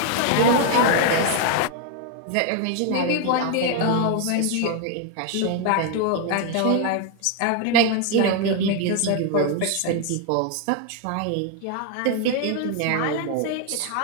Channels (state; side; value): different; both; correlation 0.00